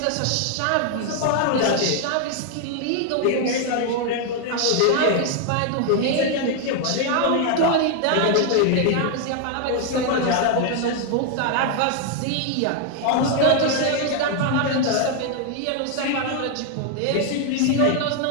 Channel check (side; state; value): both; different; correlation 0.00